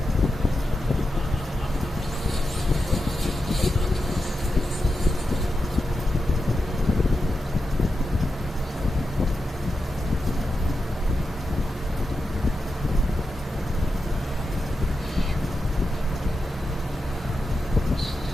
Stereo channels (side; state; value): both; normal; correlation 0.89